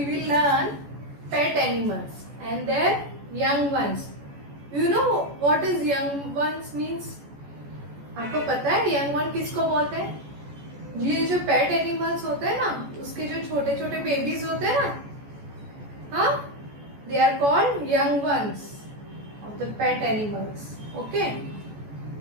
will learn pet animals and their young ones. You know what is young ones means? आपको पता है young one किसको बोलते हैं? ये जो pet animals होते हैं ना, उसके जो छोटे छोटे बेबीज होते हैं ना, हाँ, they are called young ones of the pet animals. Okay?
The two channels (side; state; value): left; late; 14 ms